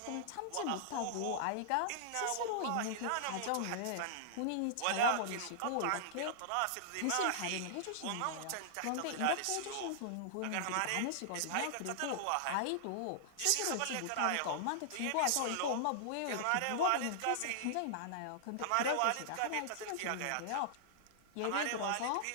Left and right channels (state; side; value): different; both; correlation -0.01